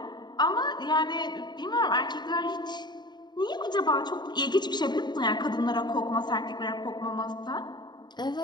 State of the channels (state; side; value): late; right; 0.21 ms